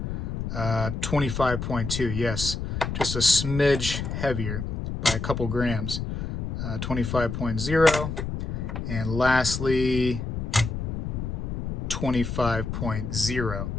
25.2, yes. Just a smidge heavier by a couple grams. 25.0. And lastly, 25.0.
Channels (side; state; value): left; noise; rumble, 4 dB below the sound